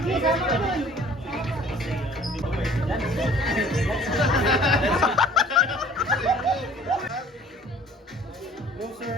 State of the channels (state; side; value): normal; both; correlation 0.52